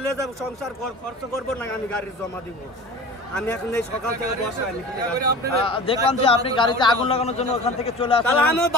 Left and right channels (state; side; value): normal; both; correlation 0.37